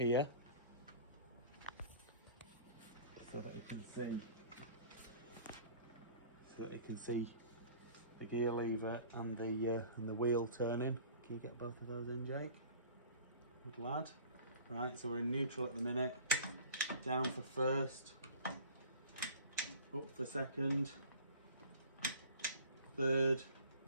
so that he can see the gear lever and the wheel turning. Can you get both of those in, Jake? Good lad. Right, so we're in neutral at the minute. Down for first, up for second, third,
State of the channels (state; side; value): inverted; both; correlation -0.44